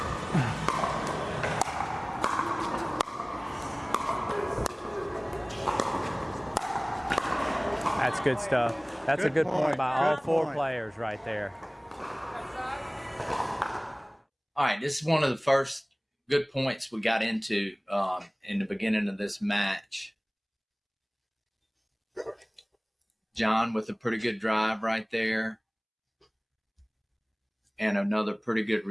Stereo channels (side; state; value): both; identical; correlation 1.00